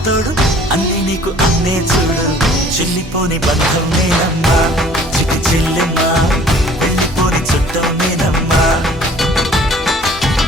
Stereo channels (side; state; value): both; normal; correlation 0.52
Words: తోడు అన్ని నీకు అన్నే చూడు చెల్లిపోని బంధం నేనమ్మా చిటి చెల్లెమ్మా వెళ్ళిపోని చుట్టం నేనమ్మా